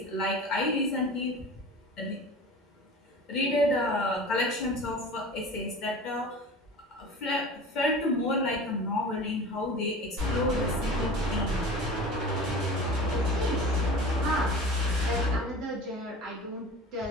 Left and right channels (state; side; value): normal; both; correlation 0.37